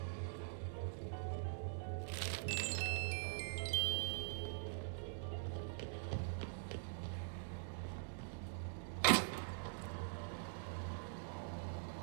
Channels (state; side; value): silent; left; digital silence